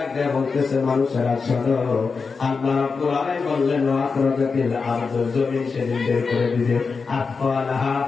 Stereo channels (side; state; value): right; quieter; 4.9 dB